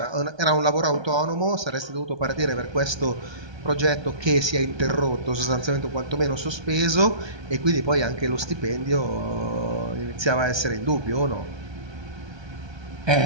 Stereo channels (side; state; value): left; late; 1.2 ms